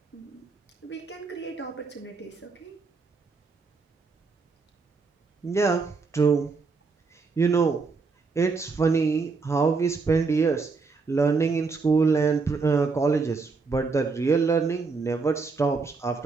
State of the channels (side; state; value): left; quieter; 4.5 dB